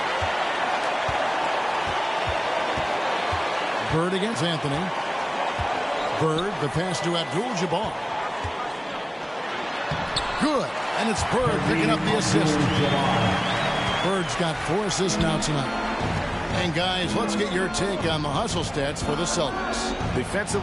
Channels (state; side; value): identical; both; correlation 1.00